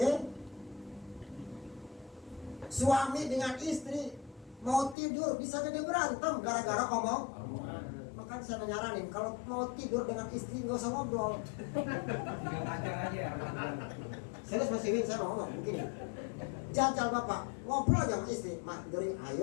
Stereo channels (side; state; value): right; drops out; at 5.0 s